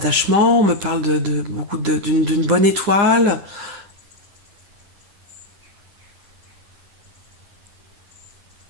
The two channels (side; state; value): left; late; 9.9 ms